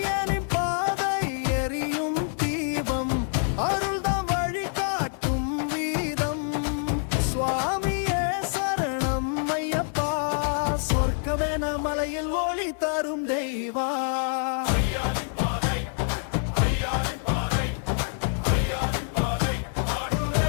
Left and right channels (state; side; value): silent; right; digital silence